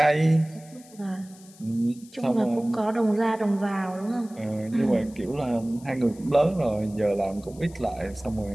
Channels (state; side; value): noise; left; hiss, 24 dB below the sound